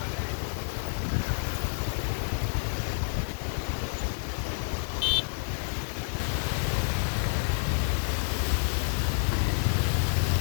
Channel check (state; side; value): silent; right; digital silence